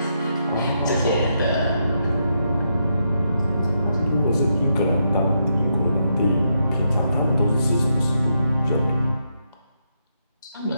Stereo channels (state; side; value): inverted; both; correlation -0.81